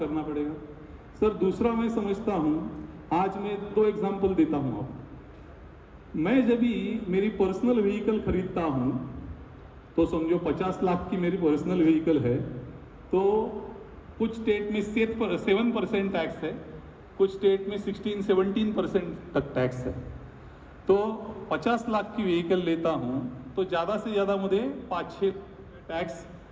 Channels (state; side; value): identical; both; correlation 1.00